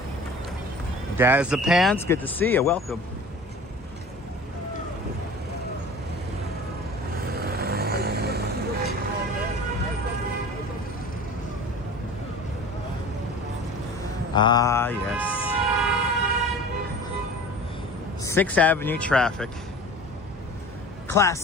Daz the Pants, good to see you. Welcome. Ah, yes. 6th Avenue traffic.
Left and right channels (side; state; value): both; normal; correlation 0.40